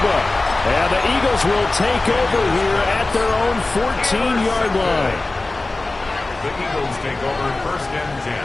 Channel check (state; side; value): quieter; right; 3.1 dB